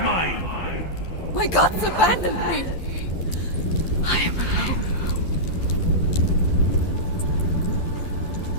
mine! My gods abandoned me! I am alone.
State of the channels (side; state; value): right; late; 12 ms